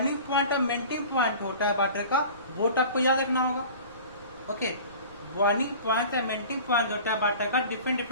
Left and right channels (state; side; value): inverted; both; correlation -0.41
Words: पॉइंट और मेल्टिंग पॉइंट होता है वाटर का, वो आपको याद रखना होगा। ओके, बॉइलिंग पॉइंट या मेल्टिंग पॉइंट होता है वाटर का, डिफरेंट